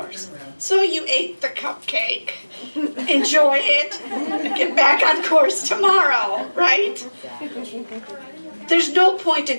So you ate the cupcake, enjoy it, get back on course tomorrow, right? There's no point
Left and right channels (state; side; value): inverted; both; correlation -1.00